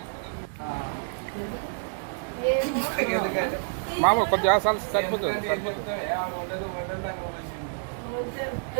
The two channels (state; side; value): silent; left; digital silence